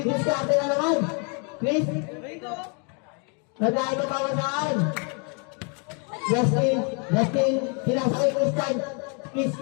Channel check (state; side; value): quieter; right; 37.0 dB